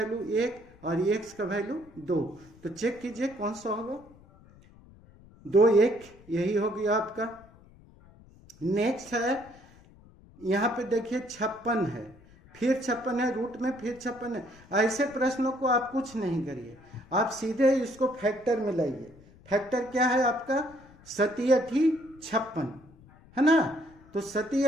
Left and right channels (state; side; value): noise; left; rumble, 24 dB below the sound